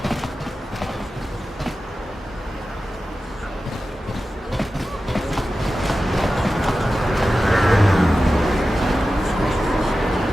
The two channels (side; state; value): both; normal; correlation 0.93